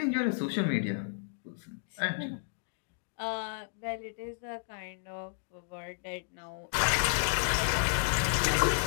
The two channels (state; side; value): silent; right; digital silence